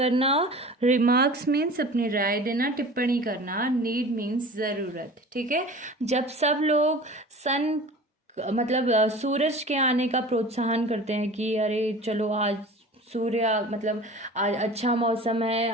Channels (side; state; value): both; normal; correlation 0.40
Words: रिमार्क्स मीन्स अपनी राय देना, टिप्पणी करना, नीड मीन्स ज़रूरत। ठीक है, जब सब लोग सन मतलब सूरज के आने का प्रोत्साहन करते हैं कि अरे चलो आज सूर्य मतलब आज अच्छा मौसम है,